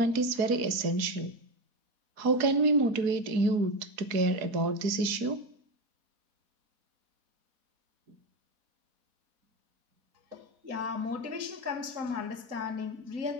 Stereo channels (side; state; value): left; late; 4.1 ms